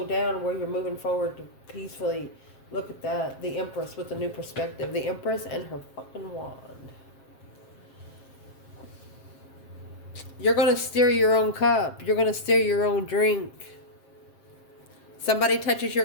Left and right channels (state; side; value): late; right; 7.5 ms